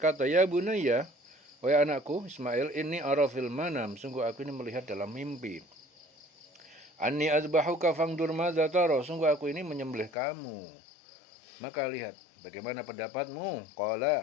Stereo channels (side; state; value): right; drops out; at 10.1 s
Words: ya bunayya, wahai anakku Ismail, ini arafil manam, sungguh aku ini melihat dalam mimpi. Anni azbahuka fangdur madza tara, sungguh aku ini menyembelih kamu, maka lihat bagaimana pendapatmu.